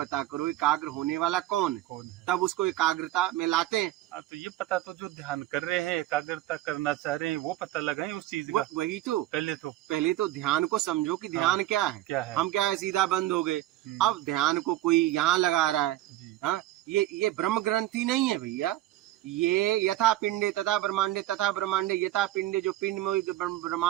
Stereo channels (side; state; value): left; quieter; 14.8 dB